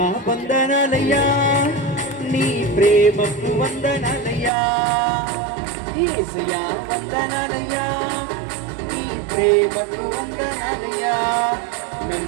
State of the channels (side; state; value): left; drops out; at 4.5 s